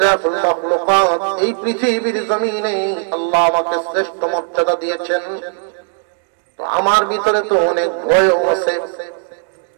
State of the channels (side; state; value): left; silent; digital silence